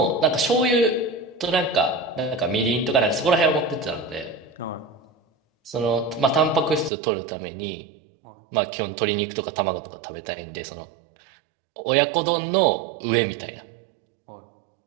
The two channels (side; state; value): left; drops out; at 6.9 s